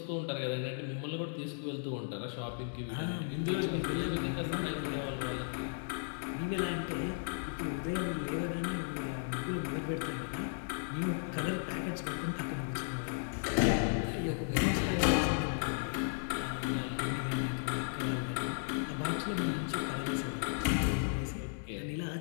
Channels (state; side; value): silent; right; digital silence